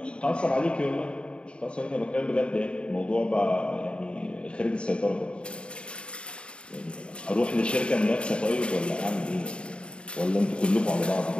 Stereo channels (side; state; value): right; late; 0.055 ms